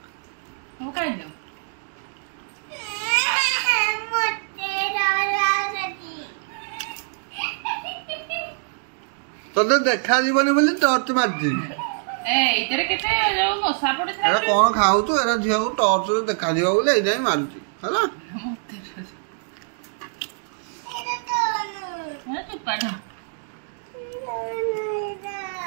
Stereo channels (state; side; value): silent; left; digital silence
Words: तोते देखा जीवनी बोली टॉर्च मारची कौन खाऊ तू एरा झील को टॉर्च देखा जीव बोले एजाई मारुची हला